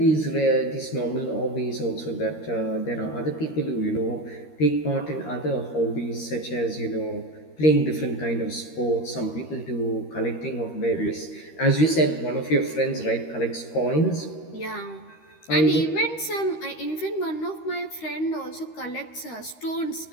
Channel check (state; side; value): late; right; 13 ms